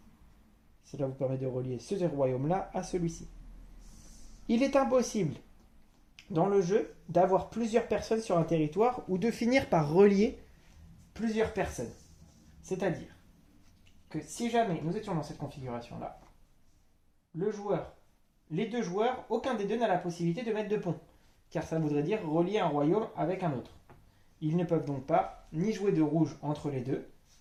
Cela vous permet de relier ce royaume-là à celui-ci. Il est impossible dans le jeu d'avoir plusieurs personnes sur un territoire ou de finir par relier plusieurs personnes. C'est-à-dire que si jamais nous étions dans cette configuration-là, les deux joueurs, aucun des deux n'a la possibilité de mettre de pont, car ça voudrait dire relier un royaume avec un autre. Ils ne peuvent donc pas ni jouer de rouge entre les deux,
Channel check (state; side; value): identical; both; correlation 1.00